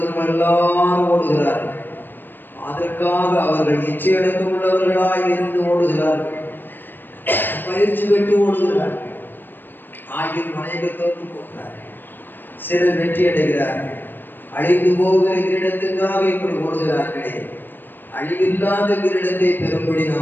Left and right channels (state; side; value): late; right; 0.094 ms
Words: எல்லாரும் ஓடுகிறார்கள். அதற்காக அவர்கள் இச்சையடக்கம் உள்ளவர்களாய் இருந்து ஓடுகிறார்கள். பயிற்சி பெற்று ஓடுகிறார்கள். ஆகிய அநேகர் தோற்று போகிறார்கள். சிலர் வெற்றி அடைகிறார்கள். அழிந்து போகிற கிரீடத்துக்காக இப்படி ஓடுகிறார்களே, அழிவில்லாத கிரீடத்தை பெறும்படி